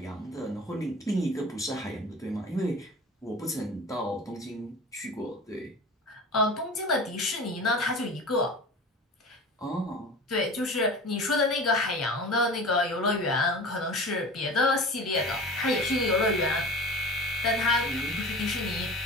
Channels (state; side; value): normal; both; correlation 0.36